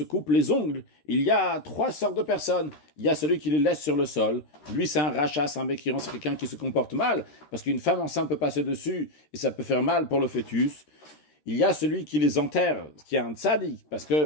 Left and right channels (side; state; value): right; late; 13 ms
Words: coupe les ongles, il y a 3 sortes de personnes. Il y a celui qui les laisse sur le sol. Lui, c'est un rachat, c'est un mécréant, c'est quelqu'un qui se comporte mal, parce qu'une femme enceinte peut passer dessus et ça peut faire mal pour le fœtus. Il y a celui qui les enterre, qui est un tzaddik, parce